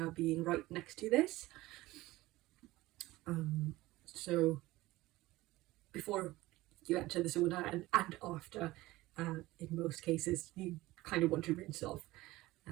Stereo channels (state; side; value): quieter; left; 18.4 dB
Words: being right next to this. So before you enter the sauna and after, in most cases, you kind of want to rinse off,